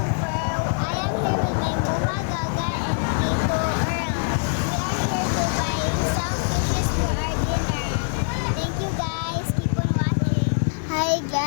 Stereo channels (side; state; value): right; silent; 62 dB below the other